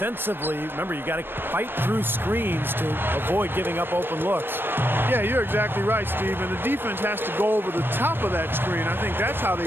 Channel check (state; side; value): late; left; 0.10 ms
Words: remember, you got to fight through screens to avoid giving up open looks. Yeah, you're exactly right, Steve. And the defense has to go over the top of that screen. I think that's how they